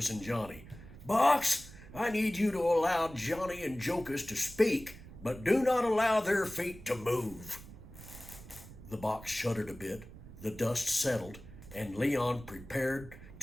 and Johnny. "Box, I need you to allow Johnny and Jocus to speak, but do not allow their feet to move." The box shuddered a bit, the dust settled, and Leon prepared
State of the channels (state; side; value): noise; right; rumble, 16 dB below the sound